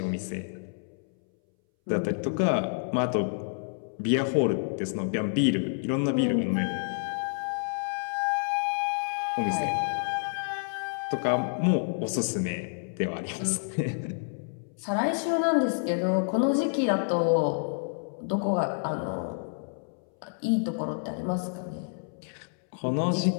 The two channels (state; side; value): silent; right; 59 dB below the other